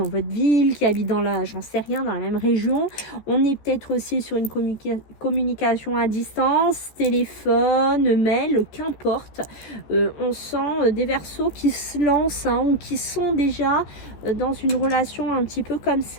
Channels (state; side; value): late; right; 14 ms